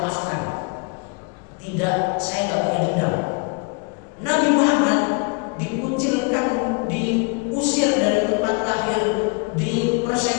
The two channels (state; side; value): quieter; right; 33.4 dB